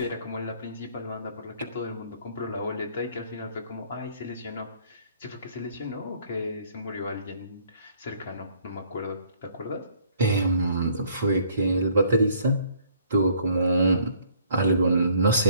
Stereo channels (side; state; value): both; inverted; correlation -0.61